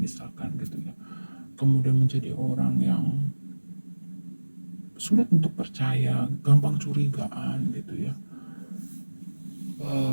misalkan gitu ya, kemudian menjadi orang yang sulit untuk percaya, gampang curigaan gitu ya.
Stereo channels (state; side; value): inverted; both; correlation -1.00